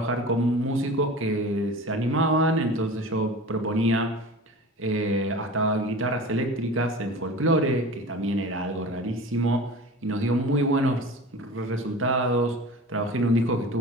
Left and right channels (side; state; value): both; normal; correlation 0.36